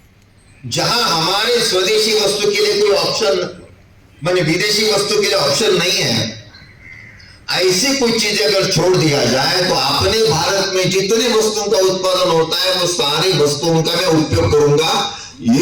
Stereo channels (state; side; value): identical; both; correlation 1.00